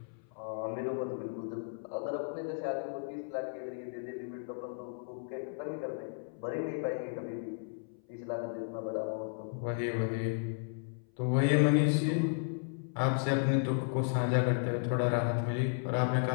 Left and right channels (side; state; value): right; silent; 55 dB below the other